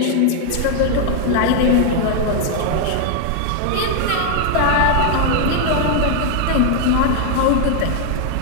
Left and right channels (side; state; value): both; different; correlation 0.00